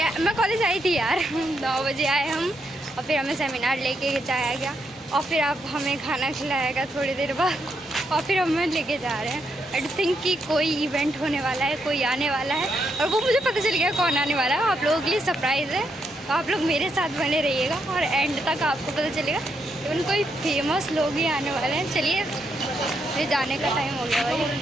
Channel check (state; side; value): normal; both; correlation 0.80